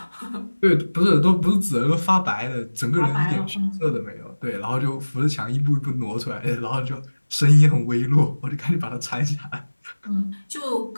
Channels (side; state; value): both; inverted; correlation -1.00